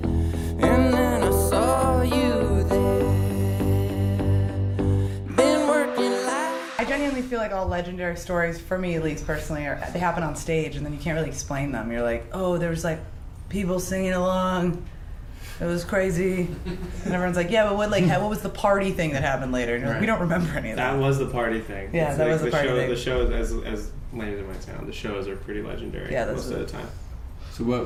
and then I saw you there. Been working like I genuinely feel like all legendary stories, for me at least personally, they happen on stage and then you can't really explain them. You're like, oh, there was like people singing along. It was crazy. And everyone's like, yeah, but what was the party thing that happened later? And you're like, we don't remember any of that. That was the party thing. Yeah, that was the party thing. The shows, as lame as it might sound, the shows are pretty legendary most of the time. So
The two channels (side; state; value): both; identical; correlation 1.00